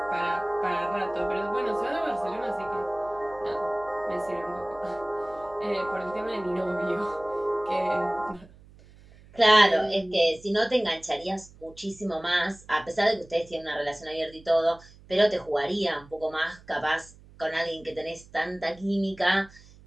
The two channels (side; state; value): right; noise; hum, 23 dB below the sound